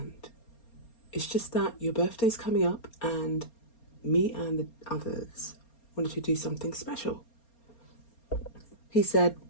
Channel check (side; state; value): right; late; 4.3 ms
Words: It's just that your birthday's coming up and me and the others wanted to do something special. He said,